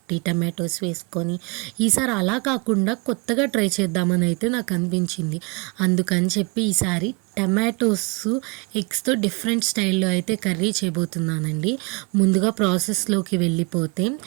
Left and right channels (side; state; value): left; quieter; 29.8 dB